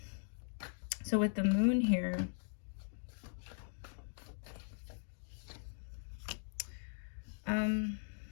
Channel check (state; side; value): silent; right; digital silence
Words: So with the Moon here, I don't